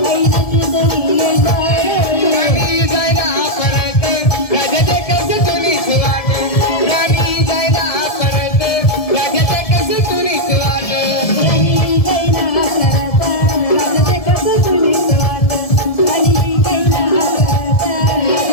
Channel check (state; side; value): late; right; 1.7 ms